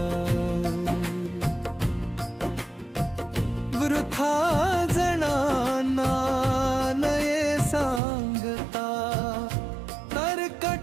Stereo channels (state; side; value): drops out; left; at 8.0 s